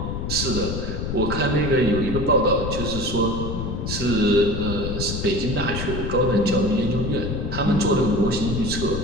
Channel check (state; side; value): noise; left; rumble, 4 dB below the sound